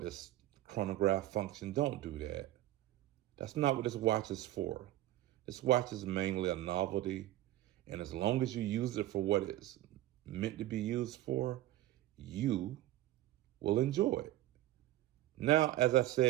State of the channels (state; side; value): quieter; left; 14.8 dB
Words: this chronograph function. Don't do that. That's not what this watch is for. This watch is mainly a novelty, and as long as you use it for what it's meant to be used for, you will enjoy it. Now, as I